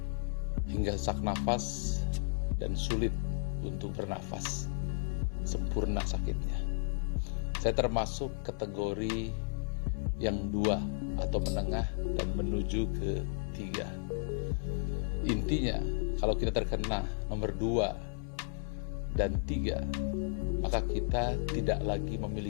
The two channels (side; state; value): right; silent; 55 dB below the other